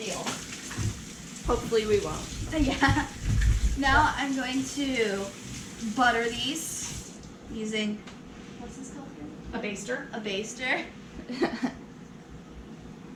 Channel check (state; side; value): identical; both; correlation 1.00